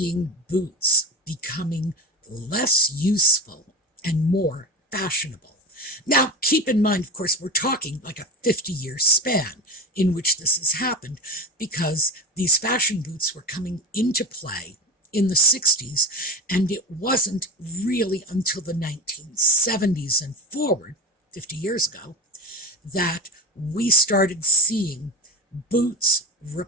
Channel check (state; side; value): normal; both; correlation 0.25